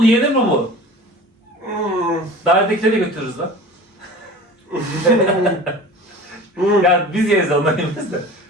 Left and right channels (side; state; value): both; normal; correlation 0.39